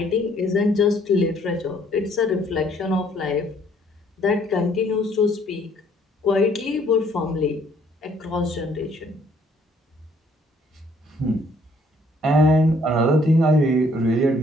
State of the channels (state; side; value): normal; both; correlation 0.63